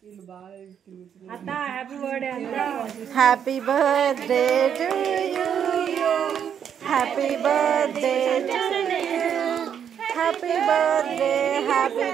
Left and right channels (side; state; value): left; quieter; 8.4 dB